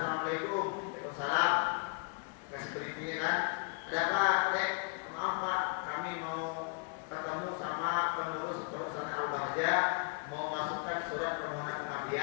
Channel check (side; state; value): right; quieter; 37.2 dB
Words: waalaikumsalam. Kasih beritinya kan, ada apa, dek? Maaf pak, kami mau ketemu sama pengurus perusahaan Al-Bahjah, mau masukkan surat permohonan